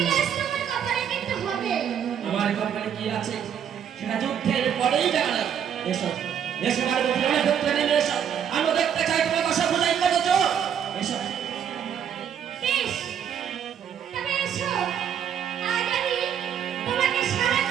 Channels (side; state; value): left; quieter; 8.6 dB